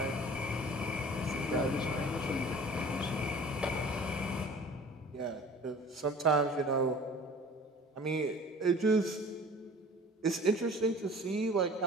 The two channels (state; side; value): normal; both; correlation 0.45